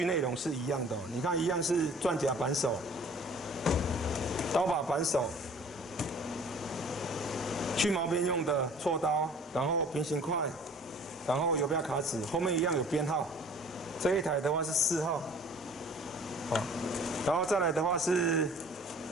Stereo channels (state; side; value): normal; both; correlation 0.49